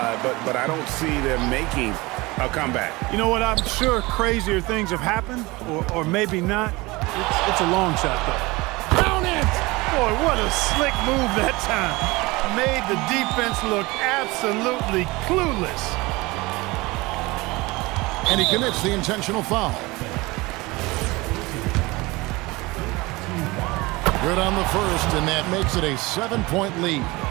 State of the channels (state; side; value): quieter; left; 22.6 dB